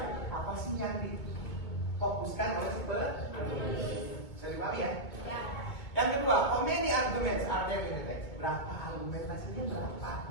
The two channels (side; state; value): right; late; 2.4 ms